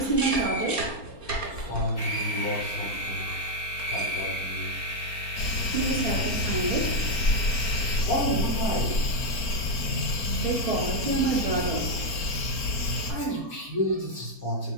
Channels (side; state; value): right; late; 4.4 ms